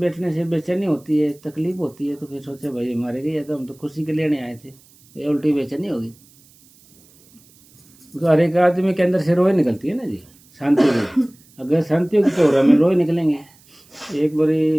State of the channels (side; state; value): right; noise; hiss, 28 dB below the sound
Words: से बेचैनी होती है, तकलीफ होती है, तो फिर सोचे भाई मारे गए, तो हम तो खुशी के लिए नहीं आए थे, ये उल्टी बेचैनी होगी। तो हर एक आदमी के अंदर से रोए निकलती है ना जी, शांति की। अगर शांति की तो में रोए निकलेंगे। एक